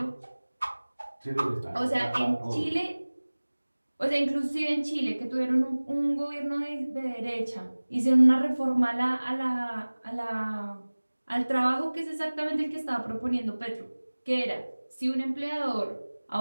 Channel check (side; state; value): both; inverted; correlation -1.00